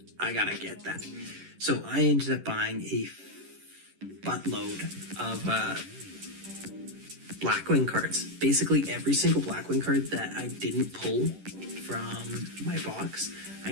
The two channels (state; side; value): late; left; 11 ms